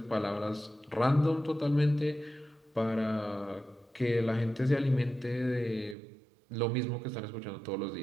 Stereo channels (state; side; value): drops out; left; at 6.0 s